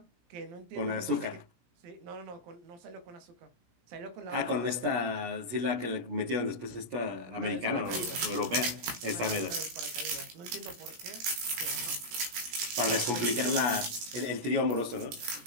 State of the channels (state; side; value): late; left; 17 ms